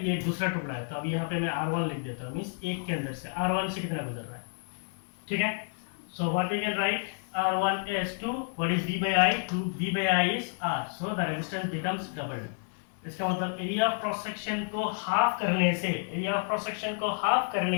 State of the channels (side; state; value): right; silent; 58 dB below the other